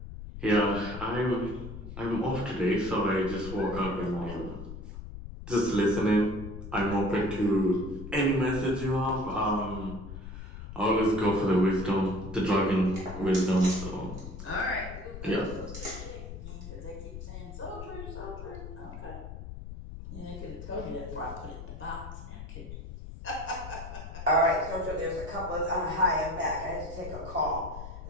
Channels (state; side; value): noise; left; rumble, 10 dB below the sound